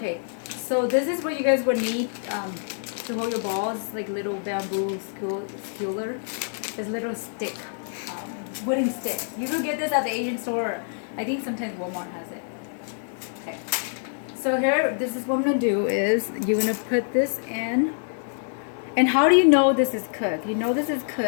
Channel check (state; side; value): silent; right; digital silence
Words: so this is what you guys would need to hold your balls, like little bamboo skewer. This little stick, wooden stick. You can get this at the Asian store. I think sometimes Walmart has it. Okay. So here, this is what I'm going to do is you're going to put this in, And how do you know this is cooked? You know this is